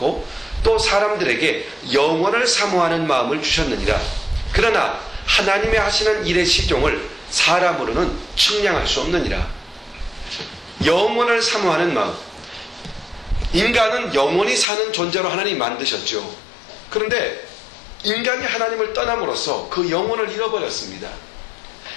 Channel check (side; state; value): right; drops out; at 14.7 s